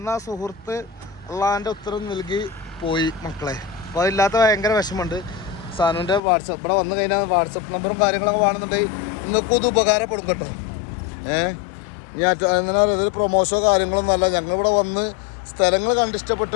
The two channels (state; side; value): drops out; right; at 6.2 s